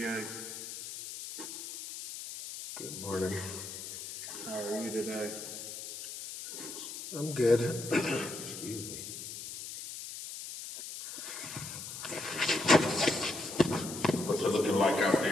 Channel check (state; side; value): noise; left; hiss, 9 dB below the sound